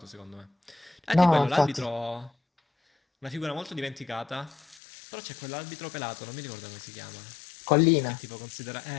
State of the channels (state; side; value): drops out; right; at 4.8 s